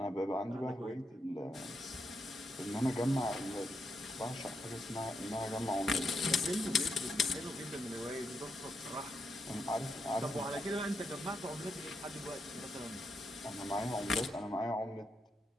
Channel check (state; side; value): normal; both; correlation 0.81